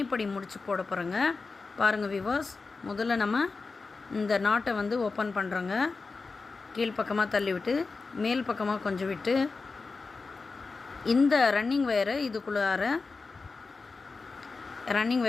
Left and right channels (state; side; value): quieter; right; 4.2 dB